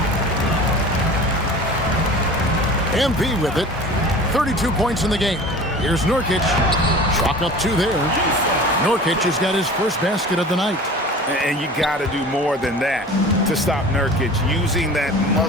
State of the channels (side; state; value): both; normal; correlation 0.40